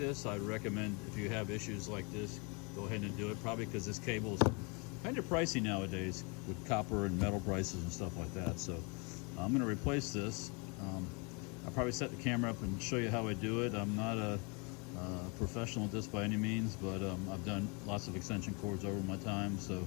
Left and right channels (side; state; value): right; quieter; 32.3 dB